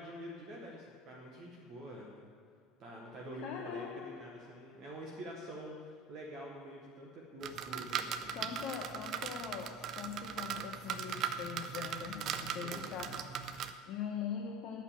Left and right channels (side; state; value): both; normal; correlation 0.35